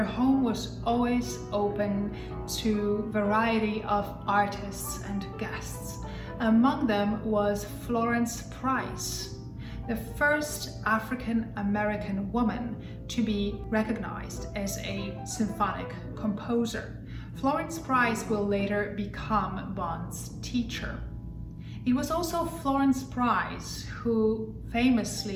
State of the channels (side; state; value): both; identical; correlation 1.00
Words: home was always open to a variety of artists and guests. Among them was Florence Price, the first African American woman to be recognized as a symphonic composer. Florence Price will later become Bonds' teacher. It was also Florence Price who